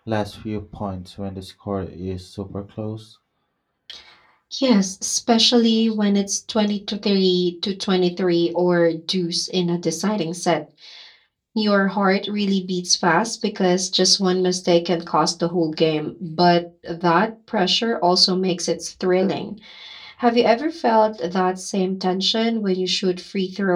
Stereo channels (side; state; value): both; identical; correlation 1.00